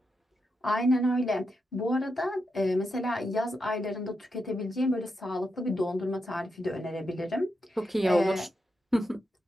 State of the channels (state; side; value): normal; both; correlation 0.85